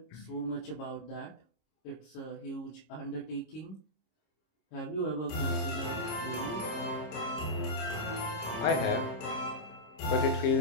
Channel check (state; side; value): late; right; 26 ms